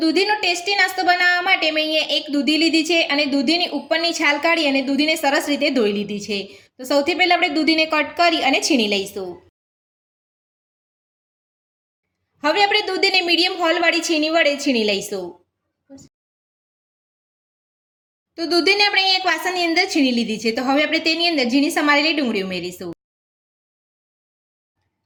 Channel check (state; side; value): identical; both; correlation 1.00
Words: દૂધીનો ટેસ્ટી નાસ્તો બનાવવા માટે મેં અહીંયા એક દૂધી લીધી છે અને દૂધીની ઉપરની છાલ કાઢી અને દૂધીને સરસ રીતે ધોઈ લીધી છે। તો સૌથી પહેલા આપણે દૂધીને કટ કરી અને છીણી લઈશું। હવે આપણે દૂધીને મીડિયમ હોલવાળી છીણી વડે છીણી લઈશું। તો દૂધીને આપણે અહીંયા એક વાસણની અંદર છીણી લીધી છે। તો હવે આપણે તેની અંદર ઝીણી સમારેલી ડુંગળી ઉમેરીશું,